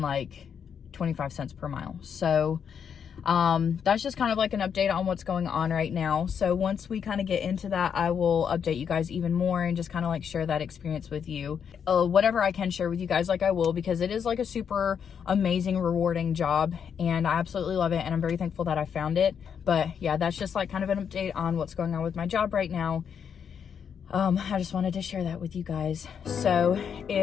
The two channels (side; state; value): right; quieter; 7.5 dB